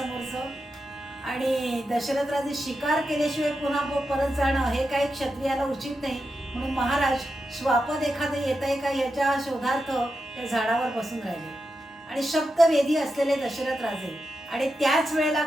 आणि दशरथ राजे शिकार केल्याशिवाय पुन्हा परत जाणं हे काही क्षत्रियाला उचित नाही. म्हणून महाराज, श्वापद एखादं येत आहे का याच्या शोधार्थ त्या झाडावर बसून राहिले. आणि शब्दवेधी असलेले दशरथ राजे. आणि त्याच वेळेला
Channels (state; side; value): normal; both; correlation 0.88